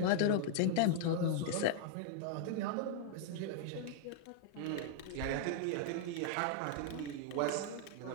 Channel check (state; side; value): different; both; correlation -0.01